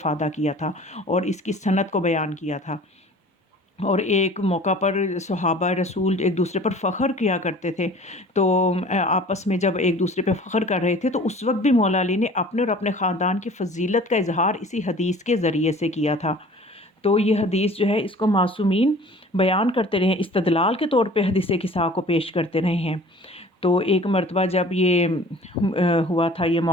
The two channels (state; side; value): normal; both; correlation 0.46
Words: کیا تھا اور اس کی سند کو بیان کیا تھا۔ اور ایک موقع پر صحابہ رسول ایک دوسرے پر فخر کیا کرتے تھے، تو آپس میں جب ایک دوسرے پہ فخر کر رہے تھے تو اس وقت بھی مولا علی نے اپنے اور اپنے خاندان کی فضیلت کا اظہار اسی حدیث کے ذریعے سے کیا تھا۔ تو یہ حدیث جو ہے اس کو معصومین بیان کرتے رہے ہیں، استدلال کے طور پہ حدیث قصہ کو پیش کرتے رہے ہیں۔ تو ایک مرتبہ جب یہ ہوا تھا یہ